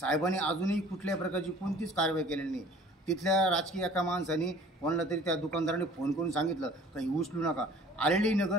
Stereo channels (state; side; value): normal; both; correlation 0.50